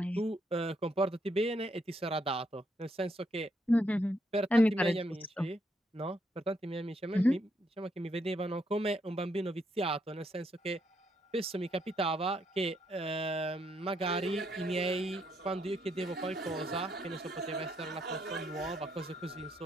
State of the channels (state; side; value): normal; both; correlation 0.75